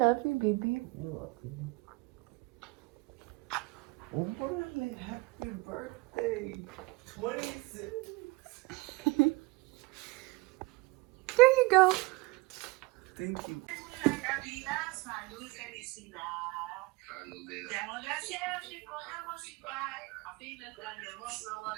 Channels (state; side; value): quieter; left; 23.5 dB